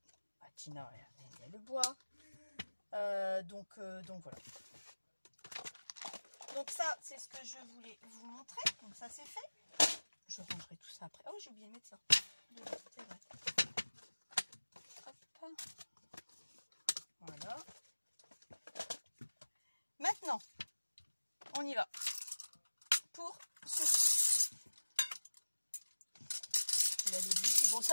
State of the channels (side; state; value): both; inverted; correlation -1.00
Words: Tina, elle aime bien le bois. Donc voilà. Donc ça, c'est ce que je voulais vous montrer. Donc ça, c'est fait. Je rangerai tout ça après. Oh, j'ai oublié de mettre ça. C'est vrai. Hop. Voilà. Maintenant, on y va. Pour ceci. Je l'avais dit. Bon,